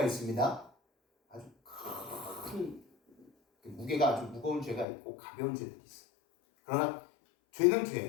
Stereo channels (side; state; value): right; drops out; at 4.9 s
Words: 있습니다. 아주 큰 무게가 아주 무거운 죄가 있고 가벼운 죄들이 있어요. 그러나 죄는